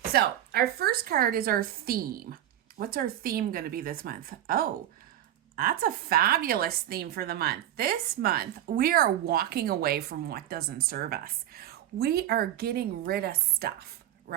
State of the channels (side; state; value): left; quieter; 12.1 dB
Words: So our first card is our theme. What's our theme going to be this month? Oh, that's a fabulous theme for the month. This month, we are walking away from what doesn't serve us. We are getting rid of stuff,